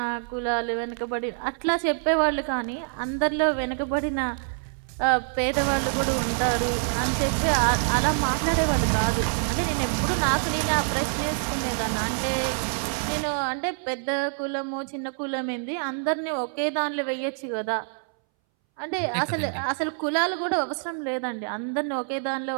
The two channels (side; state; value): left; silent; 61 dB below the other